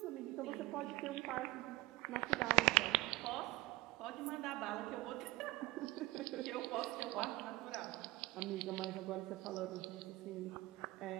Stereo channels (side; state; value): left; quieter; 20.4 dB